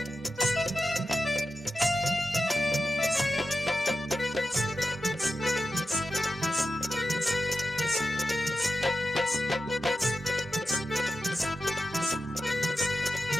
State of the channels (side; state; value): both; normal; correlation 0.90